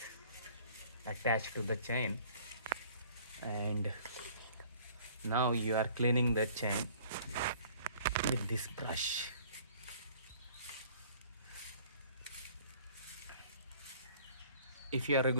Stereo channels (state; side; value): inverted; both; correlation -0.54